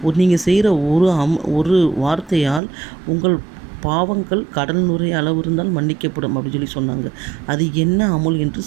நீங்கள் செய்கிற ஒரு வார்த்தையால் உங்கள் பாவங்கள் கடல் நுரை அளவு இருந்தால் மன்னிக்கப்படும் அப்படின்னு சொல்லி சொன்னாங்க. அது என்ன அமுல் என்று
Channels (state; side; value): drops out; left; at 2.6 s